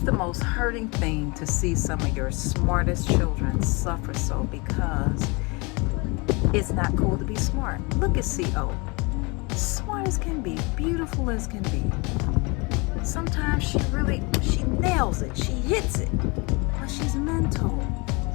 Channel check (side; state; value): right; quieter; 28.2 dB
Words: most hurting thing to see some of your smartest children suffer so, because it's not cool to be smart. Look at CO. Smart as can be, beautiful as can be. Sometimes she nails it, she hits it, but she's mental.